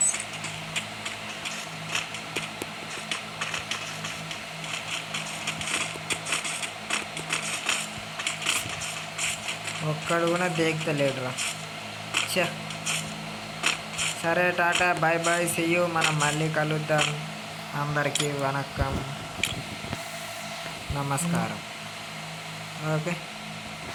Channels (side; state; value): both; identical; correlation 1.00